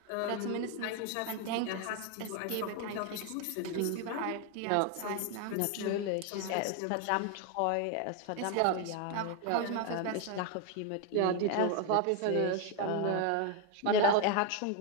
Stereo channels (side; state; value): both; different; correlation 0.01